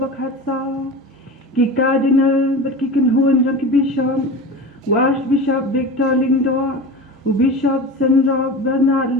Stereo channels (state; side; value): normal; both; correlation 0.30